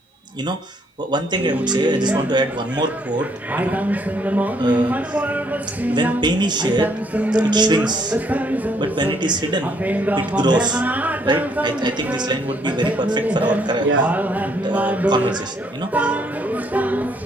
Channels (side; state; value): both; normal; correlation 0.68